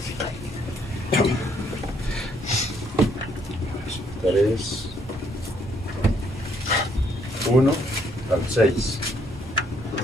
1 al 6.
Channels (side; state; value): both; normal; correlation 0.69